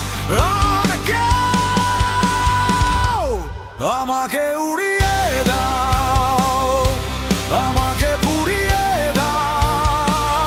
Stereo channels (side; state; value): both; identical; correlation 1.00